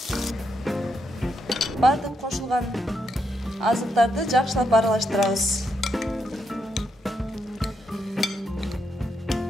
Бардык кошулган азыктарды жакшылап аралаштырабыз.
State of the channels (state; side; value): normal; both; correlation 0.80